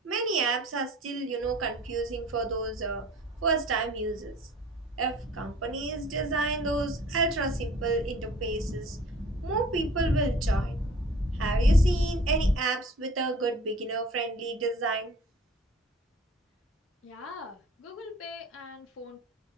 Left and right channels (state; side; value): normal; both; correlation 0.48